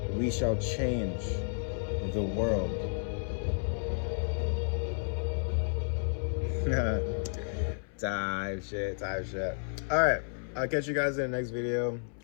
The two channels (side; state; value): right; silent; 57 dB below the other